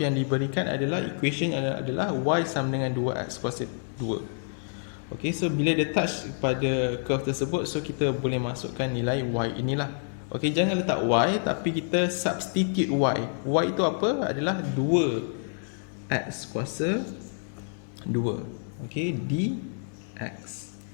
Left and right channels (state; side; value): silent; right; 59 dB below the other